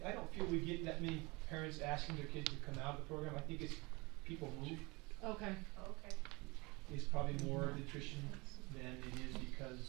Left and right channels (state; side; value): quieter; left; 25.6 dB